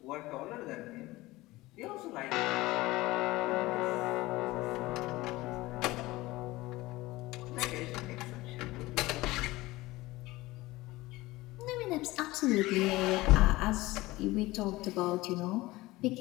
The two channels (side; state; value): right; quieter; 19.3 dB